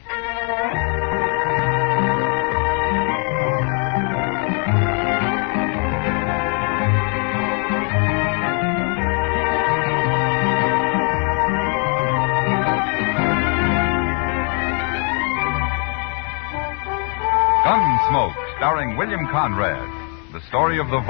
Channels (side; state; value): right; quieter; 38.8 dB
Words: Gunsmoke, starring William Conrad. The story of the